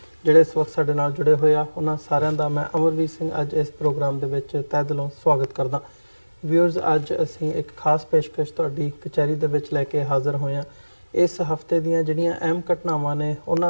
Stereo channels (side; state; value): both; inverted; correlation -1.00